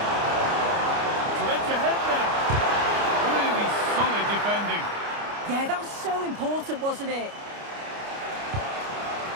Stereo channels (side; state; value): left; late; 29 ms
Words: Yeah, that was so important, wasn't it?